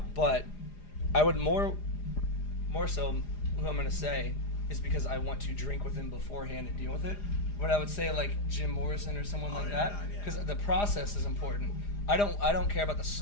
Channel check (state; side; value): late; right; 4.9 ms